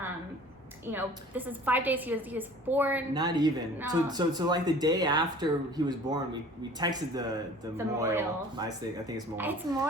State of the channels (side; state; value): both; normal; correlation 0.47